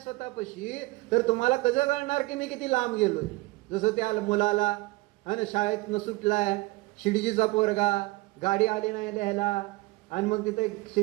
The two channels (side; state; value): left; quieter; 22.2 dB